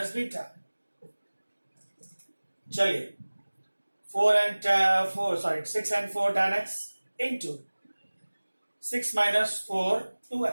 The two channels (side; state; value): both; inverted; correlation -1.00